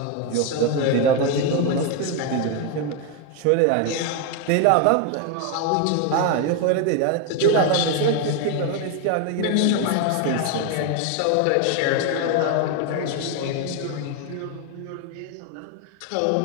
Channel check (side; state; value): both; different; correlation 0.01